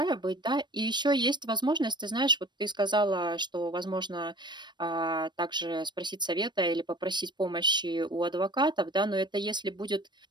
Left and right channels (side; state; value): left; late; 0.22 ms